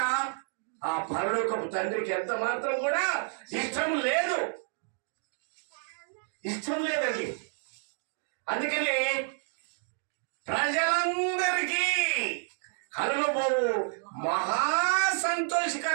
ఆ పరలోకపు తండ్రికి ఎంత మాత్రం కూడా ఇష్టం లేదు, ఇష్టం లేదండి. అందుకని ప్రజలందరికీ కలుగబోవు మహా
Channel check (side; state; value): left; silent; 58 dB below the other